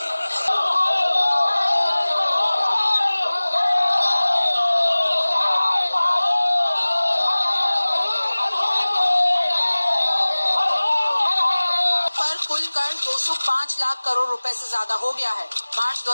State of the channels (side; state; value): both; inverted; correlation -1.00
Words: कुल कर्ज 205 लाख करोड़ रुपए से ज्यादा हो गया है। मार्च